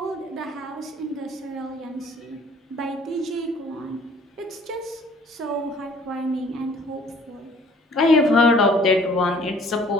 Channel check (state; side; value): normal; both; correlation 0.56